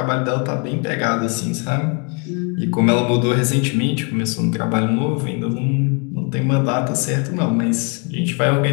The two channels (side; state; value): right; quieter; 34.9 dB